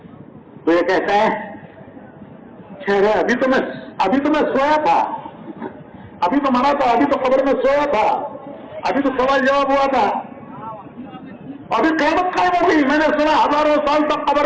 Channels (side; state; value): both; identical; correlation 1.00